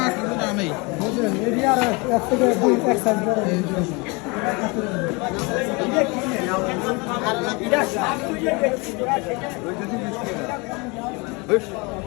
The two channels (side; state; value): right; quieter; 28.1 dB